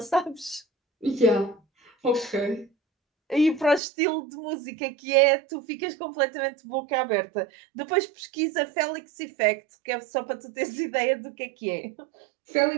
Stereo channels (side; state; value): left; drops out; at 3.8 s